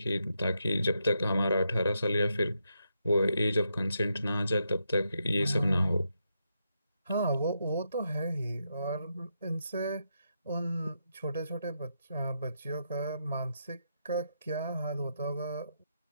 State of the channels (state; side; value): inverted; both; correlation -0.83